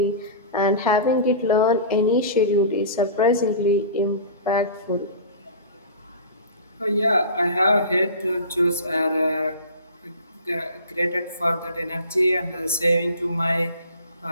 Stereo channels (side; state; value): both; inverted; correlation -0.37